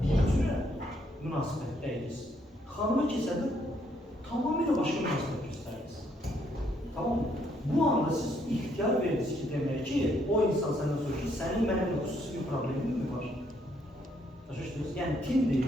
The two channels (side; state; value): both; normal; correlation 0.71